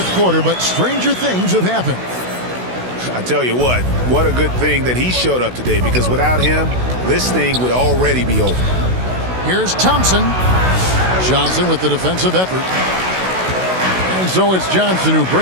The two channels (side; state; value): left; late; 16 ms